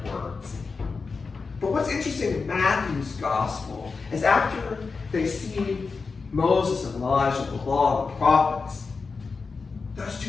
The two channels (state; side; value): quieter; right; 4.6 dB